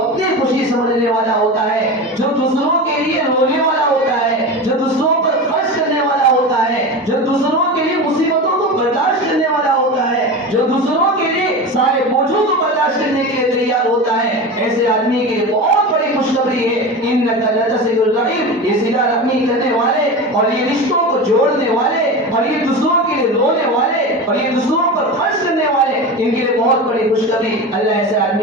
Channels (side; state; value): both; normal; correlation 0.26